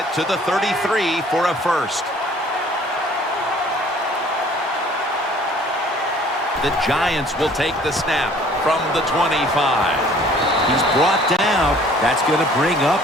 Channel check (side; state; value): both; normal; correlation 0.54